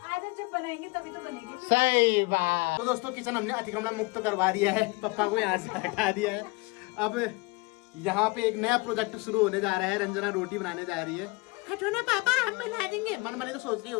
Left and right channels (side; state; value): right; quieter; 25.8 dB